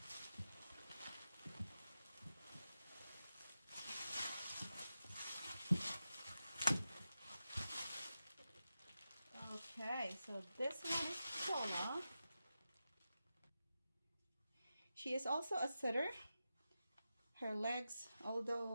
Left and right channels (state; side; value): inverted; both; correlation -0.91